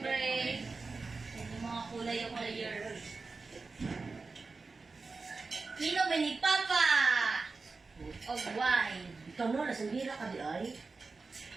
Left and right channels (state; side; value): quieter; left; 4.1 dB